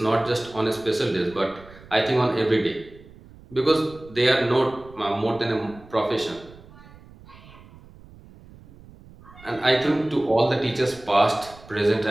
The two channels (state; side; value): noise; right; rumble, 22 dB below the sound